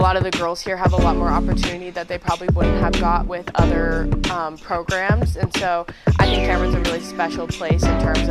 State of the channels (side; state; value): both; identical; correlation 1.00